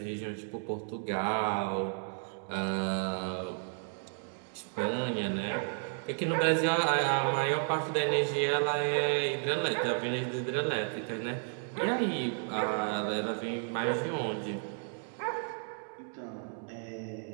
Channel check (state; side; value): silent; left; 56 dB below the other